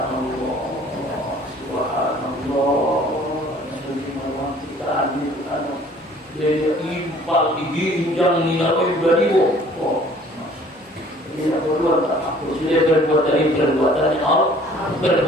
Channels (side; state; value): both; normal; correlation 0.54